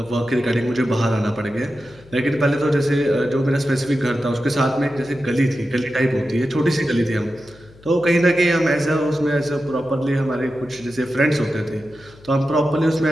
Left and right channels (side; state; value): left; noise; hum, 24 dB below the sound